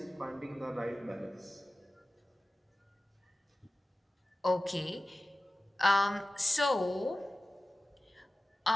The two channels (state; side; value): normal; both; correlation 0.96